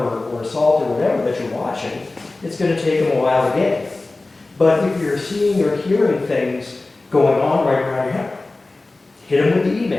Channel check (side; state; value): right; quieter; 3.2 dB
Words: or assault or whatever that you're watching. It's going to take them a while to get. But if you're seeing or hearing things going on right around your house, hit them with the